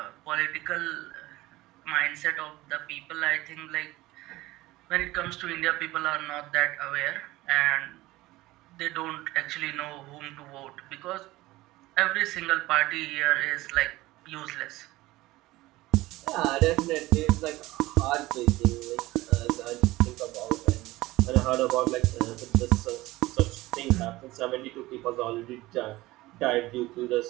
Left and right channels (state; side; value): quieter; left; 18.6 dB